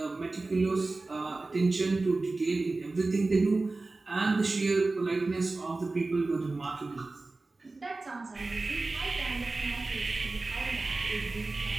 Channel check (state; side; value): quieter; left; 3.4 dB